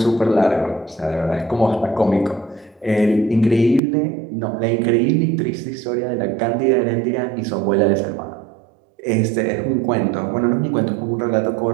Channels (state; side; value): drops out; left; at 3.8 s